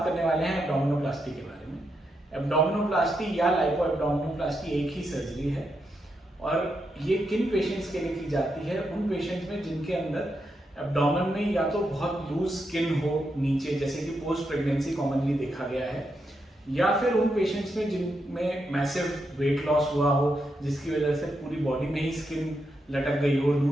करने वाले हैं एब्डोमिनोप्लास्टी के बारे में। एब्डोमिनोप्लास्टी या लाइपो एब्डोमिनोप्लास्टी एक ही सर्जरी है और ये किन पेशेंट्स के लिए की जाती है? उन पेशेंट्स में जिनके अंदर एब्डोमेन में या तो बहुत लूज स्किन हो नीचे, जैसे कि पोस्ट प्रेगनेंसी कॉमनली देखा गया है, या फिर उन पेशेंट्स में जिनमें मैसिव वेट लॉस हुआ हो जिसकी वजह से पूरी बॉडी में ही स्किन लटक गई हो,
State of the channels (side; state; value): both; normal; correlation 0.83